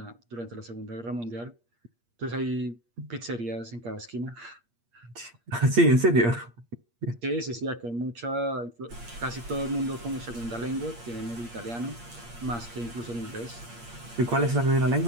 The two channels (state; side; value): late; left; 8.5 ms